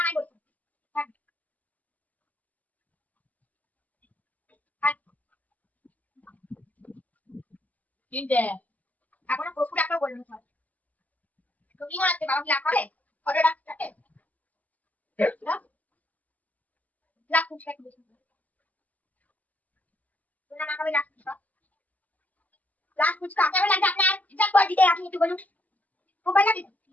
তিনটে। এখনো প্রচুর একটা বলুন তুমি মনে হচ্ছে বাবা কি রাখ হবে অর্ডার রাখতে রাখ ফুচকা একটু বেশি না না খাবে রাখ ফুচকা কেমন লাগছে আপনার হিসাব করে দিতে আপনি একটু বলুন খুব ভালো লাগে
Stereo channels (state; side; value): late; right; 0.077 ms